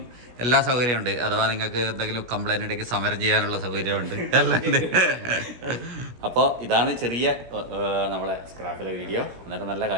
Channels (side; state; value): left; late; 16 ms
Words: എല്ലാ സൗകര്യമുണ്ട്. അഥവാ നിങ്ങൾക്ക് എന്തെങ്കിലും കംപ്ലൈൻറ്റ് ഉണ്ടെങ്കിൽ സമരം ചെയ്യാനുള്ള സൗകര്യമുണ്ട്, എല്ലാം ഉണ്ട്. അപ്പോൾ ഇതാണ് ചെറിയ നമ്മളെ സ്ക്രാപ്പിലെ വീഡിയോ. അന്നേരം നല്ല